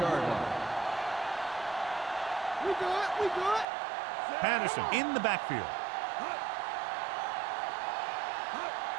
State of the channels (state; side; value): drops out; left; at 3.7 s